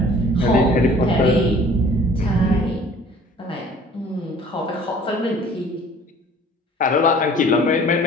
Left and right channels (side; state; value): both; normal; correlation 0.51